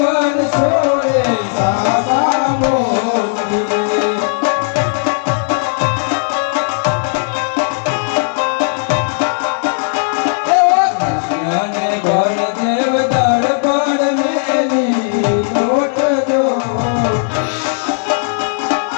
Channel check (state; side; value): silent; right; digital silence